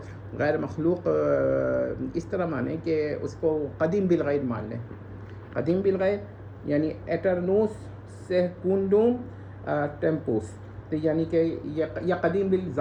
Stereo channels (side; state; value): both; identical; correlation 1.00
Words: غیر مخلوق اس طرح مانے کہ اس کو قدیم بالغیر مان لیں۔ قدیم بالغیر یعنی ایٹرنوس سیکونڈوم ٹیمپوس، تو یعنی کہ یہ قدیم